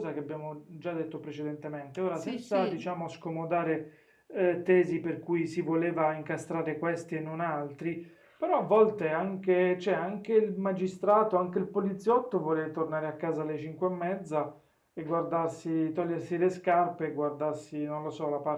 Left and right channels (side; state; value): both; identical; correlation 1.00